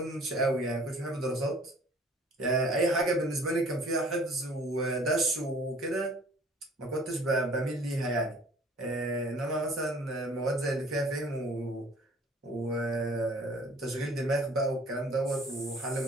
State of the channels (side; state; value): both; normal; correlation 0.52